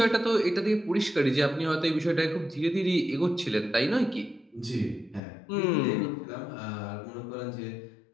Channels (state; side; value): drops out; right; at 5.2 s